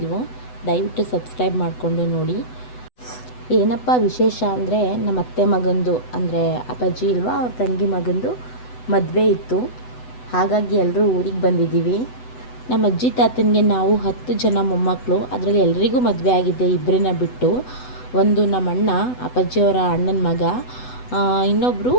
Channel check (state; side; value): late; right; 8.0 ms